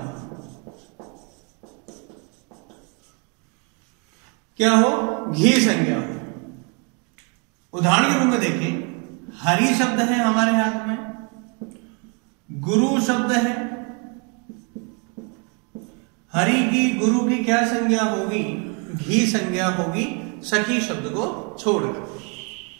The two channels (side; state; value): left; quieter; 35.2 dB